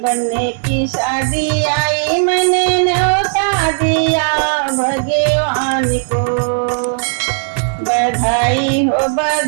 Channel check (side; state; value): left; silent; digital silence